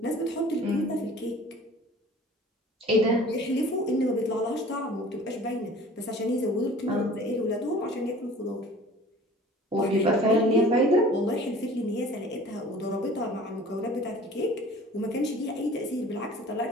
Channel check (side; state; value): both; normal; correlation 0.46